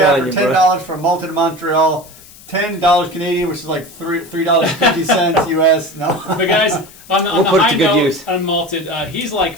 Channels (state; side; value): noise; left; hiss, 22 dB below the sound